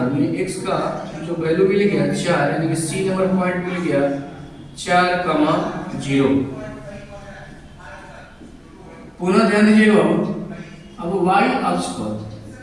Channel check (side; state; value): both; identical; correlation 1.00